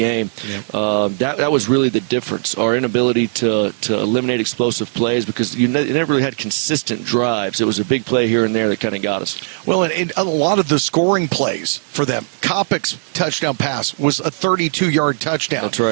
Yep. That was really the difference, our inability to eliminate explosive plays, because you never really had consistent drives. It was a big play here and there that kind of got us. Well, and a lot of the scoring plays for them, Kopic's touchdown pass was a 32-yard touchdown. That's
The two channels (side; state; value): left; silent; 67 dB below the other